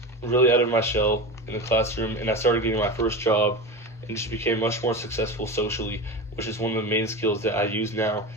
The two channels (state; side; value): normal; both; correlation 0.25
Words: really out of my shell in the classroom, and I started getting my first job and just became much more successful socially, which is one of the main skills that I use now